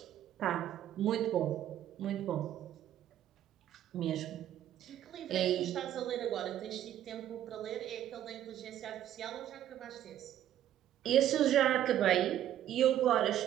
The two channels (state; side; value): quieter; left; 11.7 dB